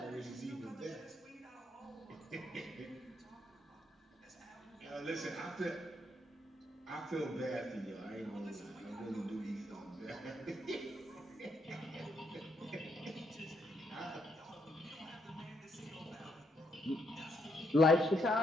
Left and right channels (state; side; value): normal; both; correlation 0.75